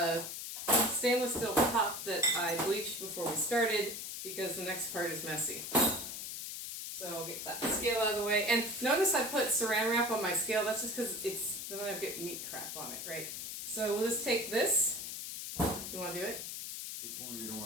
stainless steel top that I bleached before we started because the next part is messy. So I'll get that scale out of the way. And notice I put saran wrap on my scale. That's just because then I get meat crap on it, right? So we'll just take this. You want to do it? Which one are you doing?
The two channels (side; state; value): left; noise; hiss, 6 dB below the sound